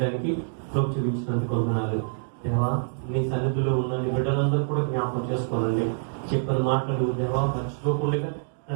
కృప చూపించినందుకు వందనాలు దేవా. నీ సన్నిధిలో ఉన్న నీ బిడ్డలందరూ కూడా జ్ఞాపకం చేసుకోనండి. చెప్పిన మాటలు దేవా మర్చిపోకుండా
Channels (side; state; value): left; silent; digital silence